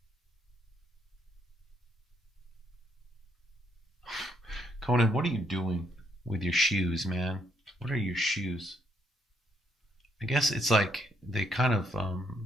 Come Conan, what are you doing with your shoes, man? What are your shoes? I guess it's like they kind of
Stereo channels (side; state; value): both; normal; correlation 0.73